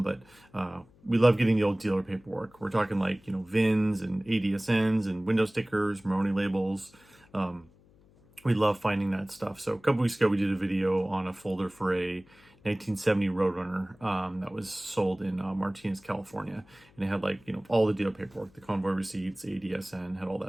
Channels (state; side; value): noise; left; hum, 28 dB below the sound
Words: But we love getting the old dealer paperwork. We're talking like, VINs and ADSNs and window stickers, Maroni labels. We love finding that stuff. So a couple weeks ago, we did a video on a folder for a 1970 Roadrunner that was sold in Martinez, California, and it had like all the dealer paperwork, the convoy receipts, ADSN, had all